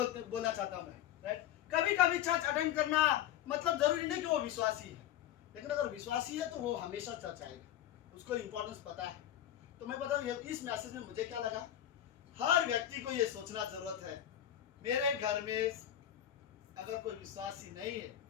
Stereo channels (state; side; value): quieter; right; 11.5 dB